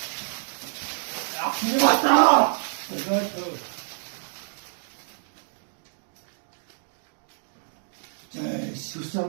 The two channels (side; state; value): left; silent; digital silence